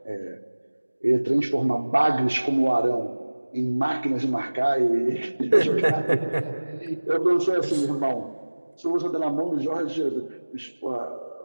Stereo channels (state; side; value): inverted; both; correlation -1.00